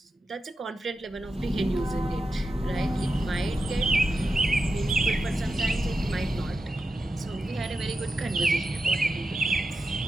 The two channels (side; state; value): both; normal; correlation 0.90